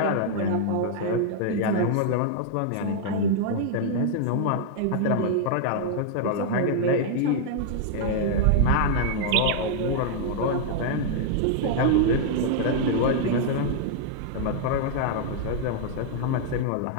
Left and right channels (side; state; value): both; different; correlation -0.01